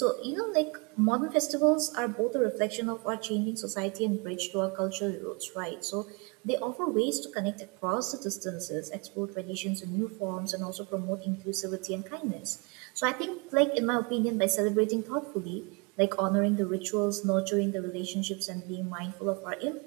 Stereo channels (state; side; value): quieter; left; 30.5 dB